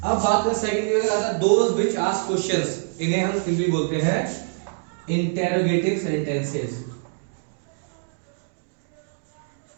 अब बात करें second those which ask questions. इन्हें हम सिंपली बोलते हैं इंटेरोगेटिव सेंटेंसेस।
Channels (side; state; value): left; silent; digital silence